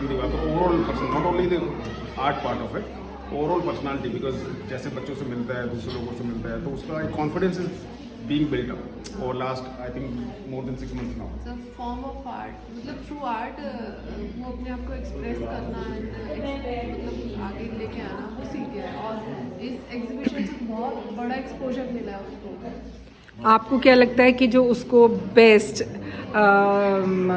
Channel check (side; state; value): both; identical; correlation 1.00